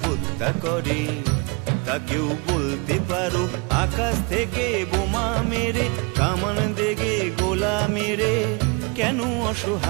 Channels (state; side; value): quieter; left; 31.2 dB